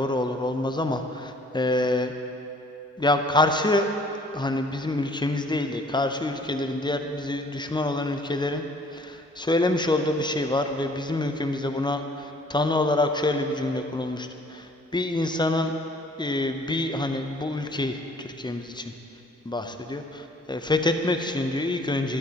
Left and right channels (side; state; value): both; normal; correlation 0.56